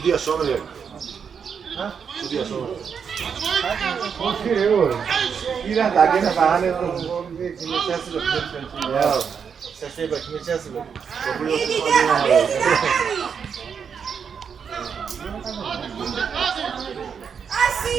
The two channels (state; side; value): quieter; left; 6.8 dB